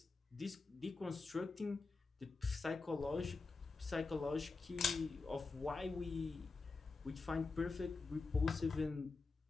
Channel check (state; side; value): quieter; right; 4.0 dB